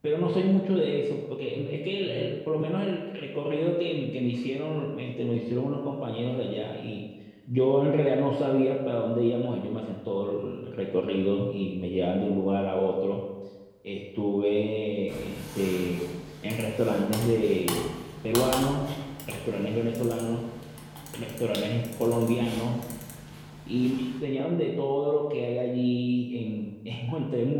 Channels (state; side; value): identical; both; correlation 1.00